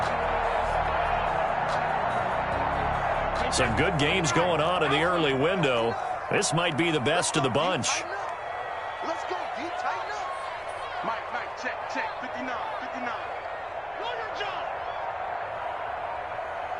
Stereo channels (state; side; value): identical; both; correlation 1.00